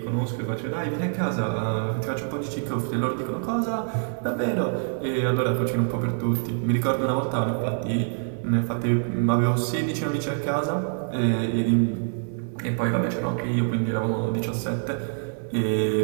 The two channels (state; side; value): silent; left; 57 dB below the other